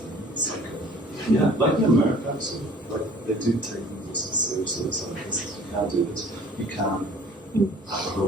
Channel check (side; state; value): both; normal; correlation 0.51